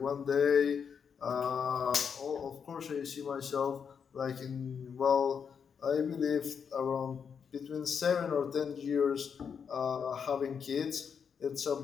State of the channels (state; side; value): quieter; right; 6.8 dB